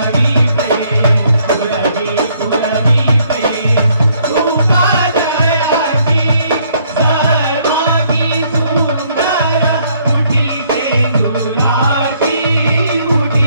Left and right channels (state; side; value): inverted; both; correlation -0.67